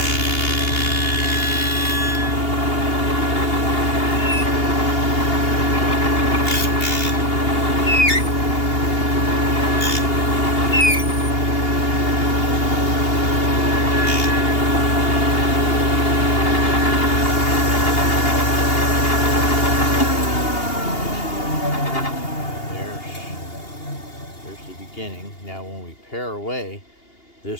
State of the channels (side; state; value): right; late; 2.8 ms